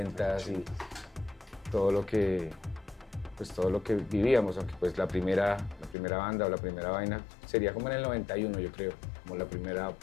y todo lo que vivíamos, aunque pues la primera banda o la primera vaina sería como en el 91, yo creo, como la primera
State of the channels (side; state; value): right; drops out; at 6.0 s